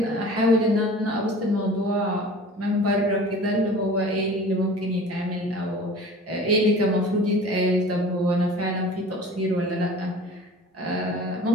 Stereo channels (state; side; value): normal; both; correlation 0.42